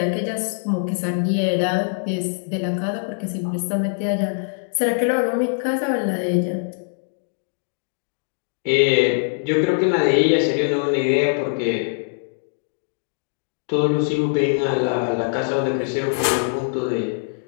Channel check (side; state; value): right; silent; digital silence